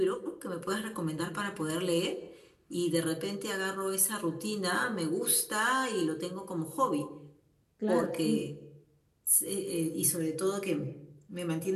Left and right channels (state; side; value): identical; both; correlation 1.00